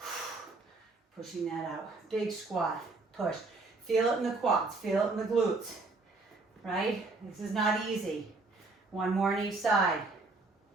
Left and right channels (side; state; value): left; quieter; 3.5 dB